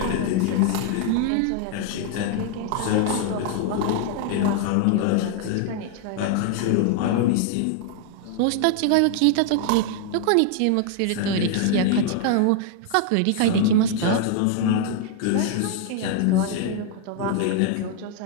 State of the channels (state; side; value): different; both; correlation 0.00